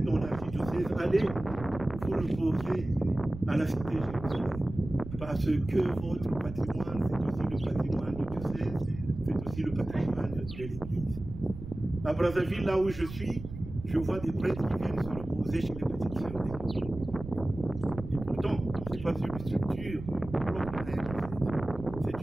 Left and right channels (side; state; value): right; noise; rumble, 11 dB below the sound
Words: dans l'archidiocèse, allez vous reposer à la cité Jérusalem. Parce que votre patrimoine, c'est aussi le patrimoine du diocèse, c'est aussi le patrimoine de l'Église. À Brazzaville, là où je suis, je vois des prêtres qui viennent se reposer chez les petites sœurs d'église. Et pourtant, ce n'est pas une structure propre à elle, c'est